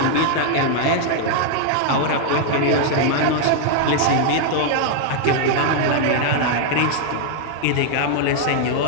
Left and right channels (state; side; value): different; both; correlation 0.00